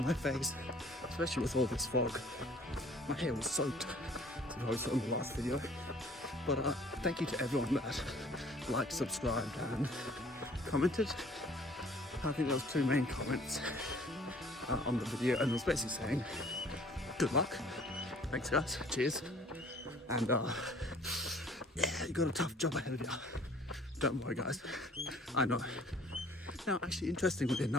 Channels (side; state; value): both; normal; correlation 0.54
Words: my face, especially with all this fog. My hair was soaked, as I saw in the last video. But thank you to everyone that liked, subscribed and commented. I think there was 2 main comments on the video, and it was basically saying, good luck, thanks guys, cheers. And yeah, you got a tough job ahead of you. Don't worry guys, I know. Now actually, interestingly